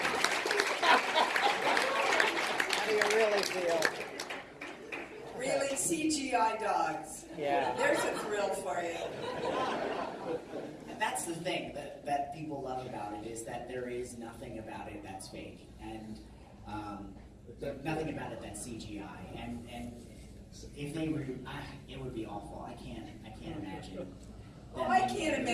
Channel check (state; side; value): identical; both; correlation 1.00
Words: How do you really feel? Really, CGI dogs. Yeah. There's a thrill for you. And that's the thing that people love about it, is that there is nothing about it that's fake, and nothing about it that's CGI. And if they were, it would be awful. I can't imagine. Oh, I can't